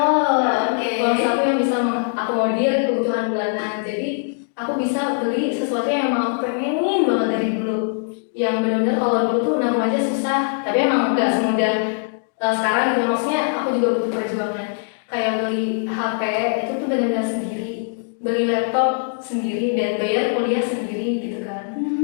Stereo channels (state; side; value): silent; right; digital silence